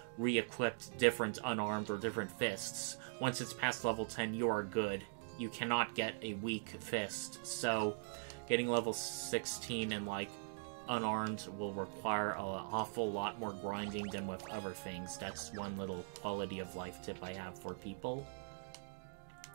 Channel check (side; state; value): left; silent; digital silence